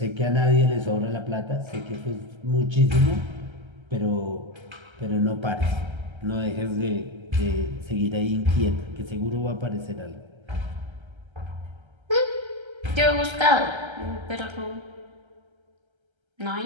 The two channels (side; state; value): left; late; 1.3 ms